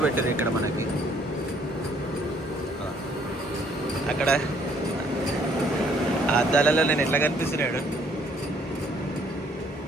పెట్టారు ఇక్కడ మనకి. అక్కడ ఆ అద్దాలలో నేను ఎట్లా కనిపిస్తున్నాడు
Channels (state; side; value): normal; both; correlation 0.64